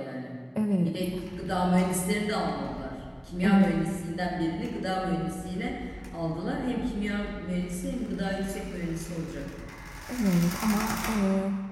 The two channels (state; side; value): identical; both; correlation 1.00